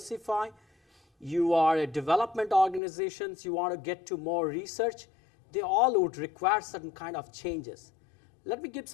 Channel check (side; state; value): right; drops out; at 2.8 s